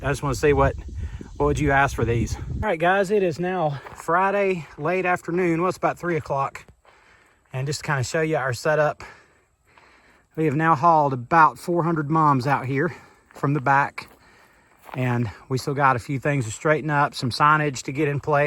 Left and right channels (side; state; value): both; identical; correlation 1.00